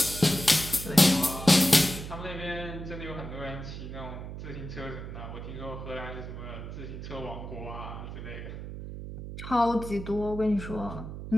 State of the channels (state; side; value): noise; right; hum, 9 dB below the sound